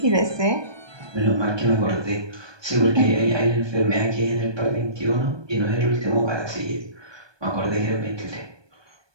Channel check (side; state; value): left; late; 1.2 ms